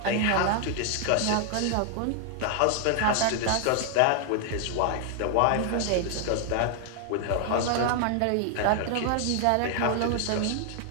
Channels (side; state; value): both; different; correlation 0.00